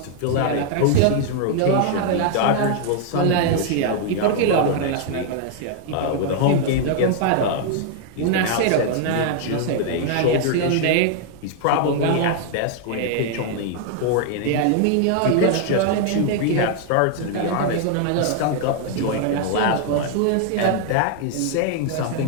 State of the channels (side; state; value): both; different; correlation 0.00